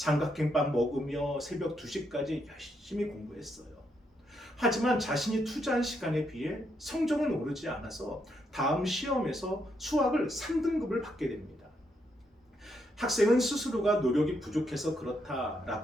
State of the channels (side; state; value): both; normal; correlation 0.78